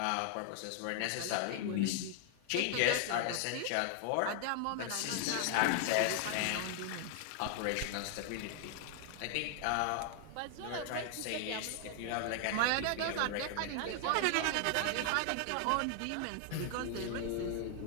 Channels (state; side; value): different; both; correlation 0.00